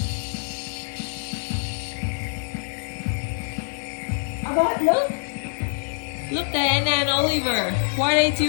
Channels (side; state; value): right; silent; digital silence